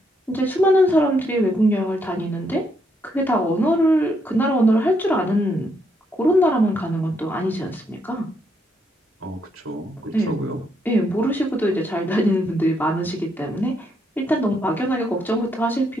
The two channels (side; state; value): both; normal; correlation 0.75